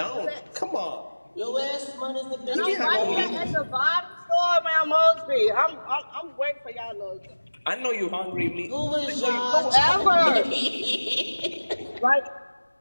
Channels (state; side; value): inverted; both; correlation -1.00